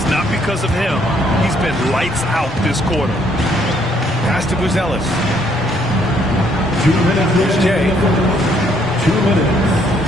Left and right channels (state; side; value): noise; left; rumble, 18 dB below the sound